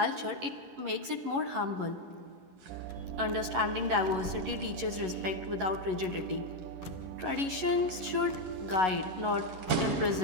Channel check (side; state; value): left; late; 11 ms